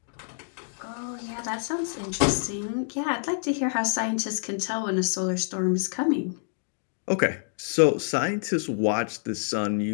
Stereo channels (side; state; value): right; silent; digital silence